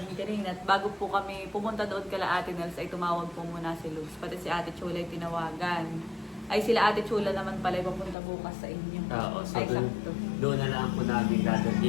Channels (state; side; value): drops out; right; at 8.2 s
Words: kanina, at bago po kami pumunta doon kala Ate Nels ay tumawag po muna si Logs. Pati si Ate Chula ay tinawagan. Ay sila Ate Chula naman pala ay papunta bukas sa inyo. Oo, so Ay, doon, sakto. doon na lang po namin